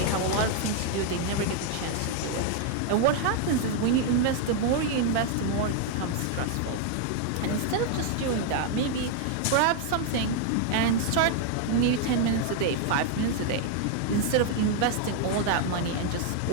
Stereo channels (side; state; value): both; different; correlation 0.00